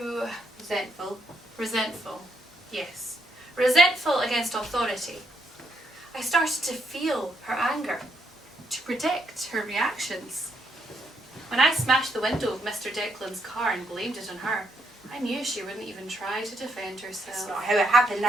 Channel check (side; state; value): both; normal; correlation 0.76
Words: Resentful. resentful. Yes. Resentful against authority. I started to feel her anger, to predict her reactions. When I smashed the window of Mr. Declan's car and blamed it on her, I knew she wouldn't even try to defend herself. That's not how it happened.